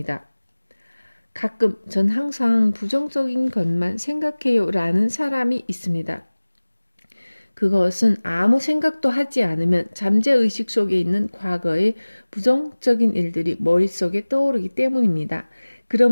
가끔 전 항상 부정적인 것만 생각해요 라는 사람이 있습니다. 그것은 아무 생각도 하지 않으면 잠재의식 속에 있는 과거의 부정적인 일들이 머릿속에 떠오르기 때문입니다.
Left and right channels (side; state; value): both; inverted; correlation -1.00